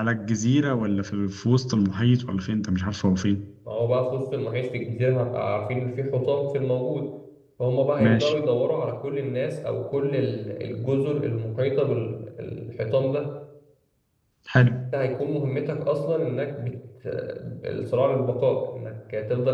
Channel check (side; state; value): both; identical; correlation 1.00